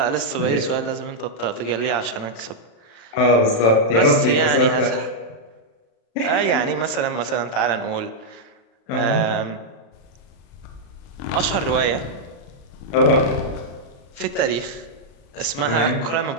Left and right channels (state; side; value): late; right; 35 ms